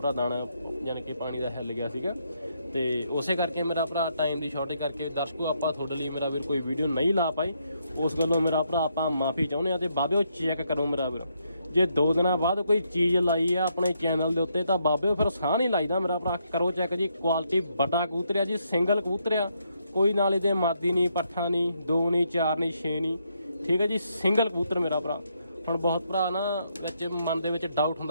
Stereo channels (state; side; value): inverted; both; correlation -0.76